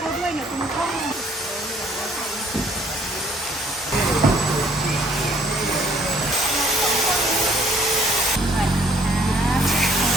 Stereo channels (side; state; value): both; normal; correlation 0.61